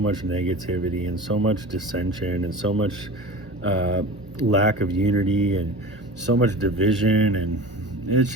negativity and so much dissension and so much lack of unity and so much division, and it's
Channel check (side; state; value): both; normal; correlation 0.34